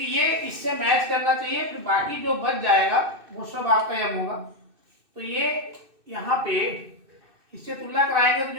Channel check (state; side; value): late; left; 2.6 ms